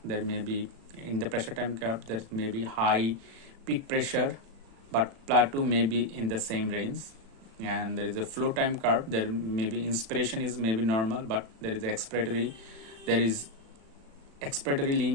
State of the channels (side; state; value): left; late; 36 ms